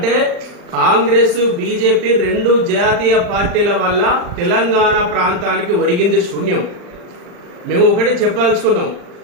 కాంగ్రెస్ బీజేపీ రెండు జాతీయ పార్టీల వల్ల తెలంగాణ ప్రాంతానికి ఒరిగింది శూన్యం. మేము ఒకటి చెప్పదలుచుకున్నాం,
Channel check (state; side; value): late; left; 40 ms